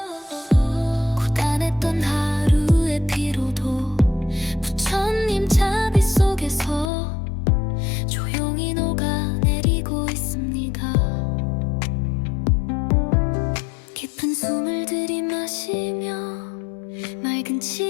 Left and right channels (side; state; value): right; drops out; at 6.9 s